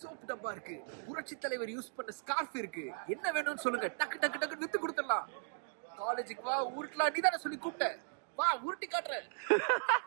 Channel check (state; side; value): silent; left; digital silence